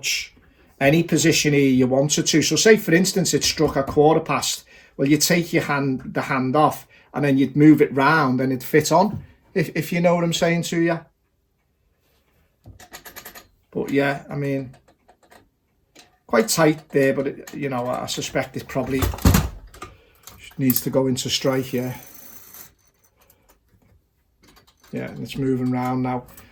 any position here you wanted to. So say, for instance, it struck a 1/4 Well, you take the hand off, and then you'd move it round and it'd fit on, if you know what I'm saying to you. But yeah, I mean, quite tight there, but it, you know, I suspect it probably needs to go into strike. Yeah, and it's moving round now.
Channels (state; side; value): identical; both; correlation 1.00